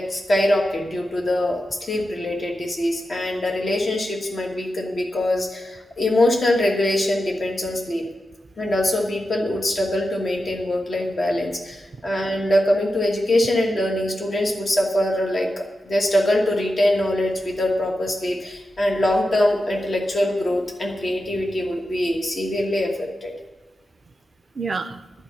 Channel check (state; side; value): normal; both; correlation 0.90